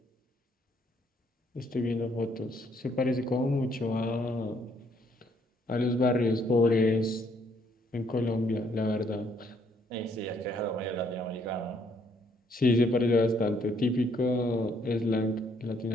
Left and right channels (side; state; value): both; normal; correlation 0.68